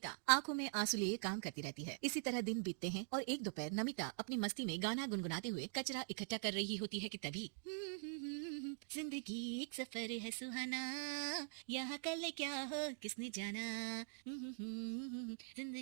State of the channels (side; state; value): left; silent; digital silence